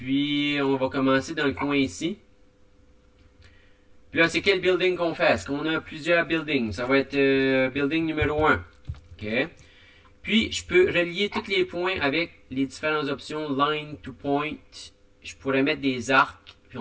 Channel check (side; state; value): both; identical; correlation 1.00